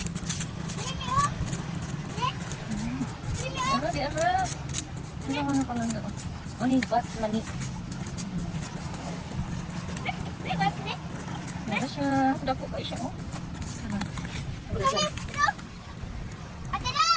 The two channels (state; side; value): identical; both; correlation 1.00